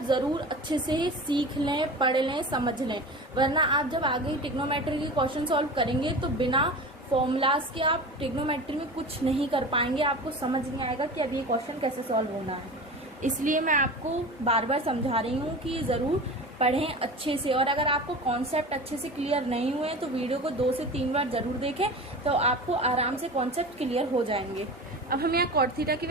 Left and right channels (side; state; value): both; normal; correlation 0.33